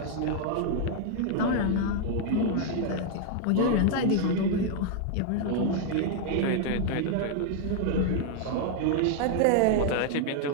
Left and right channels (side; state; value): both; different; correlation 0.00